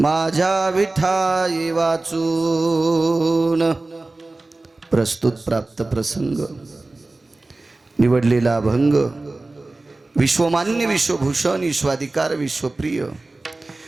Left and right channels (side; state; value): left; quieter; 3.1 dB